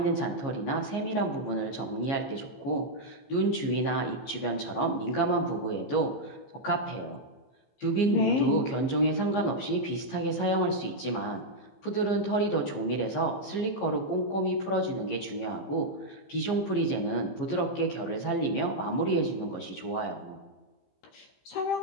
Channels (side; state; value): right; late; 15 ms